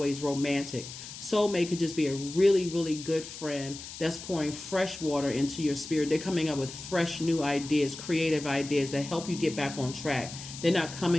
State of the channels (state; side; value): noise; left; hiss, 12 dB below the sound